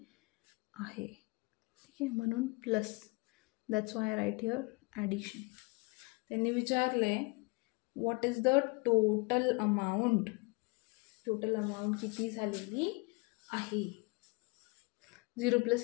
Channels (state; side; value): quieter; right; 28.5 dB